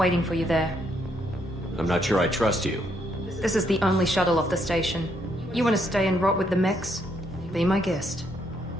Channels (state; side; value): normal; both; correlation 0.73